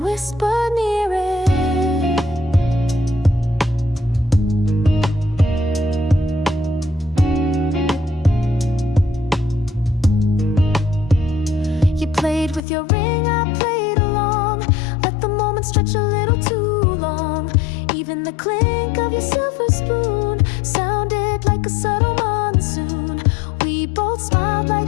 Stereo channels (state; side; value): drops out; right; at 12.6 s